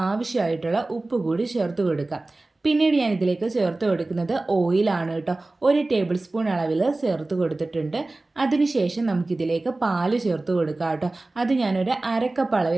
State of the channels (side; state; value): left; quieter; 3.0 dB